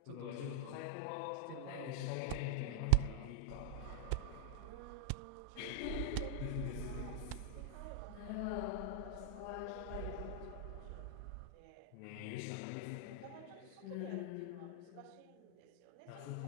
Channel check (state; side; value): different; both; correlation -0.01